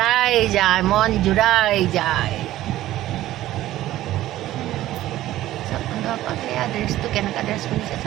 যায়, মন জোৰাই যায়। বন্ধুসকল সেয়া ড্ৰেছটো কেনেকুৱা ড্ৰেছ পিন্ধিছে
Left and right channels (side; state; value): left; quieter; 14.7 dB